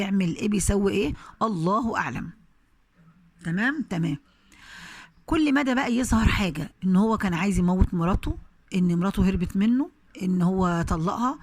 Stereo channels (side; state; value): both; identical; correlation 1.00